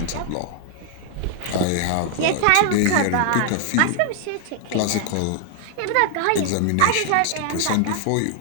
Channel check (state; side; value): different; both; correlation 0.00